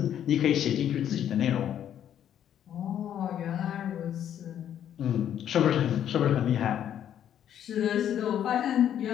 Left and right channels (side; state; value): right; quieter; 10.1 dB